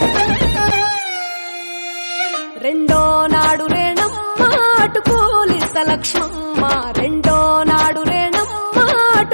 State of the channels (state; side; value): inverted; both; correlation -1.00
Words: రెండో నాడు రేణమ్మ అటుకూలిస్త లక్ష్మమ్మ రెండో నాడు రేణమ్మ